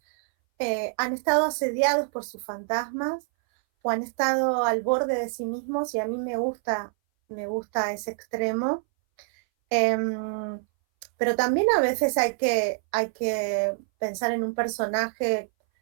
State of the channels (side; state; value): left; silent; 60 dB below the other